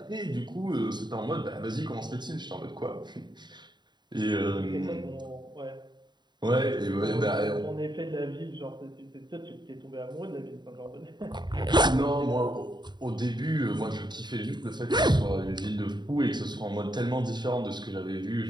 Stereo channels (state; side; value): late; left; 0.21 ms